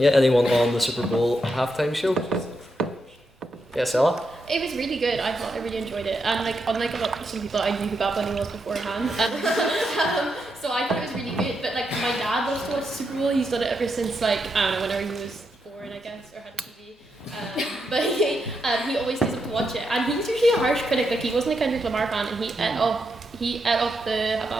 anyone on the Super Bowl halftime show? Yes, Ella? It was really good. I thought I really enjoyed it, and like unlike some people, I knew who Bad Bunny was beforehand, so I thought it was really good. But like my dad loves to watch the Super Bowl. He's done it ever since like I don't know, whenever he was born, I guess, or had a TV. But he always stays up to watch it, and he's usually a harsh critic. Like he wasn't a Kendrick Lamar fan, and he ate up the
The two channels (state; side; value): normal; both; correlation 0.83